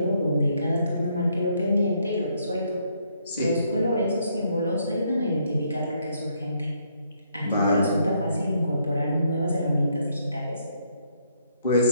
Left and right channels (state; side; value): inverted; both; correlation -0.72